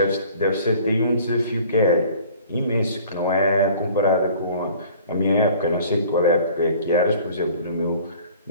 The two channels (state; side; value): inverted; both; correlation -0.50